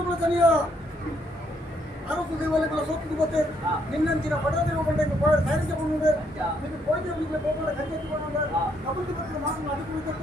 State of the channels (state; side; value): normal; both; correlation 0.72